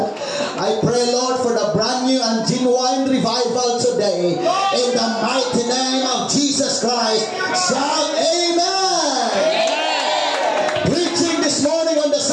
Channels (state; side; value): identical; both; correlation 1.00